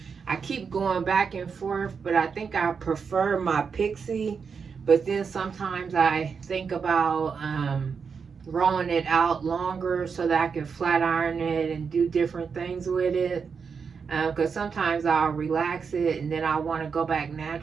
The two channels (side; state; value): left; quieter; 5.9 dB